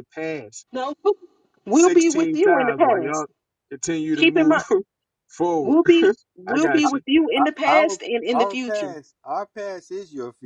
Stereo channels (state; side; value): identical; both; correlation 1.00